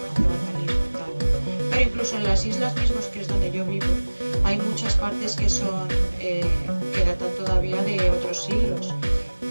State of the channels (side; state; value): both; inverted; correlation -1.00